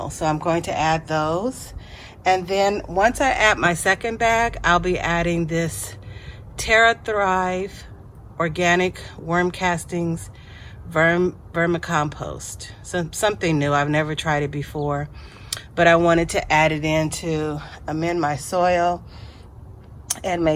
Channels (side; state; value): both; identical; correlation 1.00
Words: So I'm going to add those. And then once I add my second bag, I'll be adding this Terra organic worm castings vermicompost. Something new. I've never tried it before, but I wanted to add it in to amend my soil and